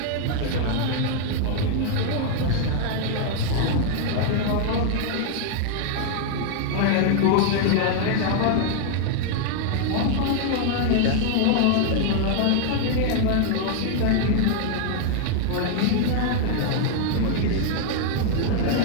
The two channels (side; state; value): both; different; correlation 0.00